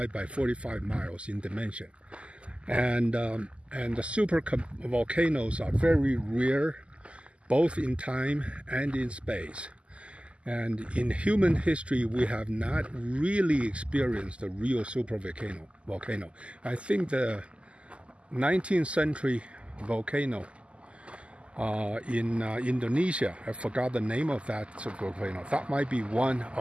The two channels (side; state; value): left; late; 0.055 ms